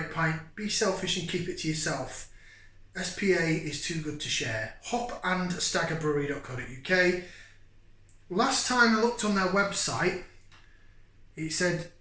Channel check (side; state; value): both; identical; correlation 1.00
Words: pint. Be selfish and keep it to yourself. SPA is too good to share. hopandstaggerbrewery.co.uk. Last time I looked on their website, it said